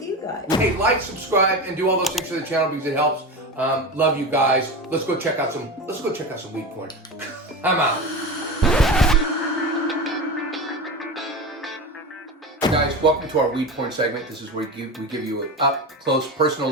you guys. Hey, like, subscribe, and do all those things for the channel because it helps. Love you guys. Let's go check out some weed porn. I'm out. Guys, welcome to our weed porn segment. This is where we give you an up close personal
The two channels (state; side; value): normal; both; correlation 0.24